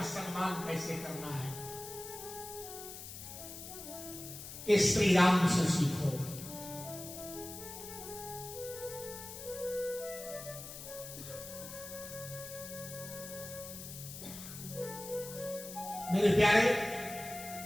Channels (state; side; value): noise; left; hiss, 11 dB below the sound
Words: सम्मान कैसे करना है, ये श्री राम से सीखो। मेरे प्यारे,